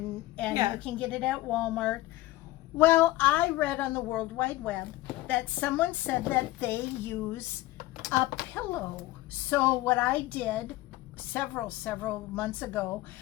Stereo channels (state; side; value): quieter; right; 17.6 dB